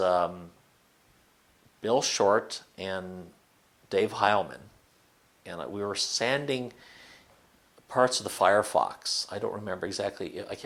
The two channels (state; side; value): identical; both; correlation 1.00